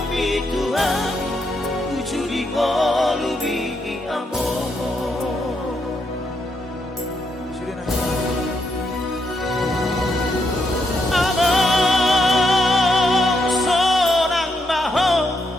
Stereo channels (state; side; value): normal; both; correlation 0.79